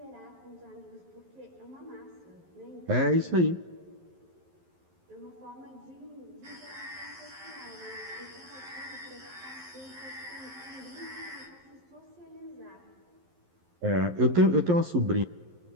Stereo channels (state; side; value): late; left; 11 ms